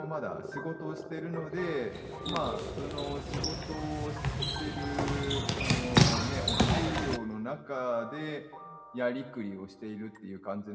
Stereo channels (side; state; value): both; identical; correlation 1.00